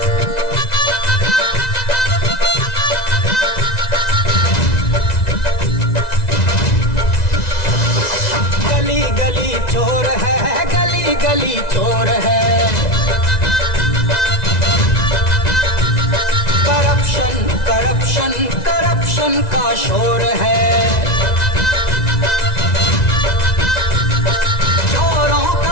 गली गली चोर है, गली गली चोर है। करप्शन करप्शन करप्शन का शोर है। चोरों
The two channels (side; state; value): right; late; 1.9 ms